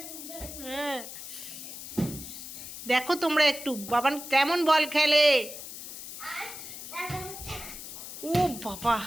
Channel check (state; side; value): noise; left; hiss, 11 dB below the sound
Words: হ্যাঁ, দেখো তোমরা একটু বাবান কেমন বল খেলে। ও বাবা,